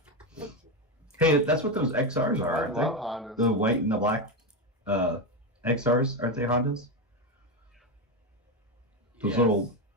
Fight you. Hey, that's what those XRs are, I aren't love they? Hondas. The white and the black XRs, aren't they Hondas? Those Yes. little,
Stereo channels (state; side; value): normal; both; correlation 0.12